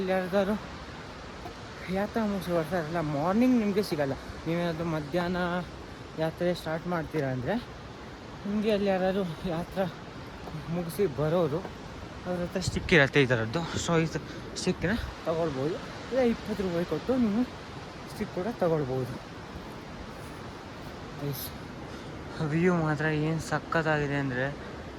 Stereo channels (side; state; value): both; identical; correlation 1.00